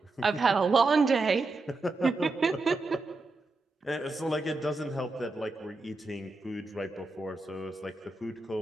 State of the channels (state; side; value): quieter; left; 3.3 dB